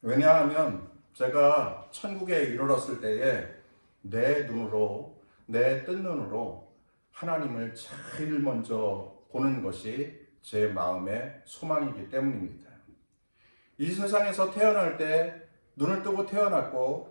왜냐하면 제가 천국에 이르렀을 때에 내 뜬 눈으로 하나님을 제일 먼저 보는 것이 제 마음의 소망이기 때문입니다. 이 세상에서 태어날 때 눈을 뜨고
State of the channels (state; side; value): inverted; both; correlation -1.00